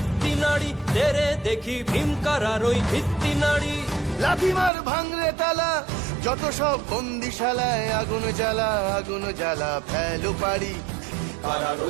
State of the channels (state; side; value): drops out; left; at 4.7 s